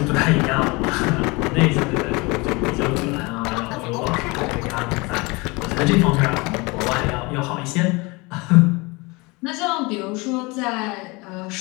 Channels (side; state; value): right; quieter; 25.8 dB